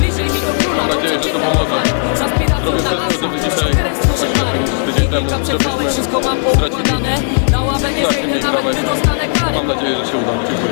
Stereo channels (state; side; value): silent; right; digital silence